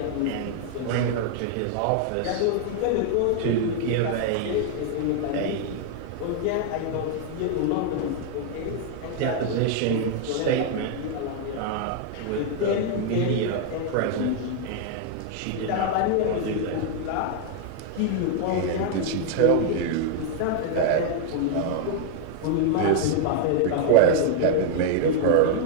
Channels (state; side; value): different; both; correlation 0.00